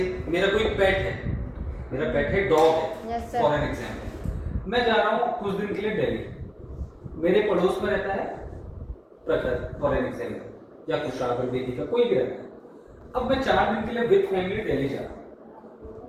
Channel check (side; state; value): both; identical; correlation 1.00